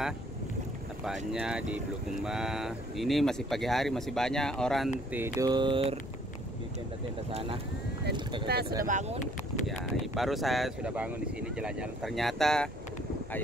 tepatnya di Bulukumba. Ini masih pagi hari, masih banyak orang tidur di tenda-tenda sana. Dan kita sudah bangun. Ya, baru saya sudah bangun di sini jalan-jalan. Ternyata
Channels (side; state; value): left; noise; rumble, 15 dB below the sound